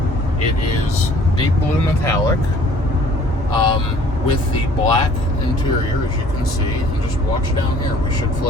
It is deep blue metallic with the black interior, as you can see. And just watch down here. We should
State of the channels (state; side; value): normal; both; correlation 0.54